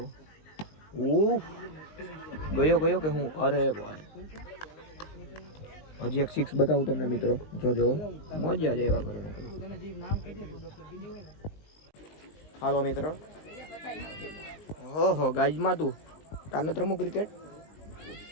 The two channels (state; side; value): late; right; 19 ms